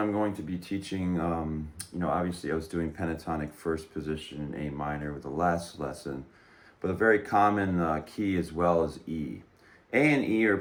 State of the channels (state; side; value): identical; both; correlation 1.00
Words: going to be teaching, obviously I was doing pentatonic first position in A minor with the last lesson, but a very common key as well is E. A and E are